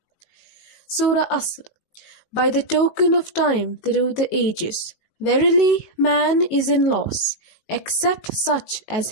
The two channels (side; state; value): right; late; 18 ms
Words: Surah Asr. By the token of time through the ages, verily man is in loss, except such as